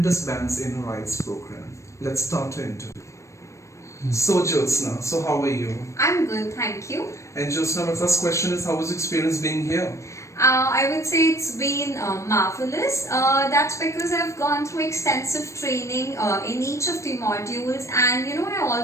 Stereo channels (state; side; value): late; right; 0.15 ms